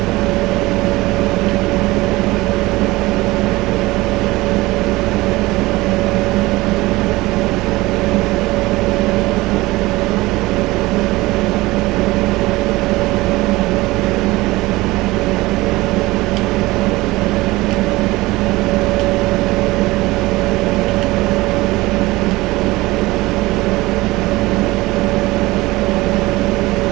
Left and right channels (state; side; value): quieter; left; 20.0 dB